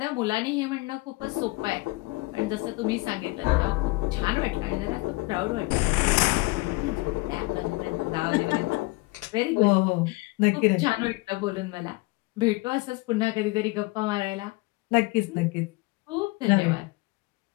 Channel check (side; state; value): right; quieter; 23.7 dB